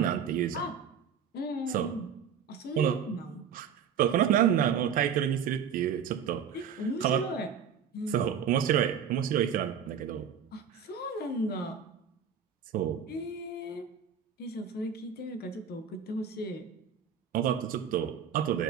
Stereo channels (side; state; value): left; quieter; 7.5 dB